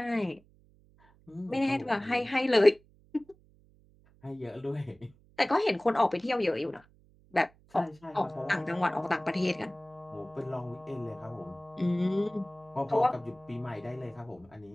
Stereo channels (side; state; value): right; noise; hum, 29 dB below the sound